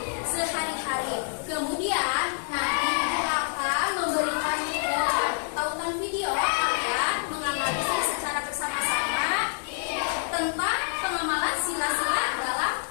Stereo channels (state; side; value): silent; right; digital silence